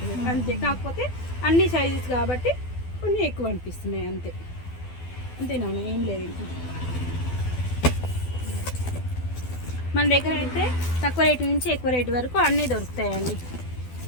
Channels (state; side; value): late; right; 12 ms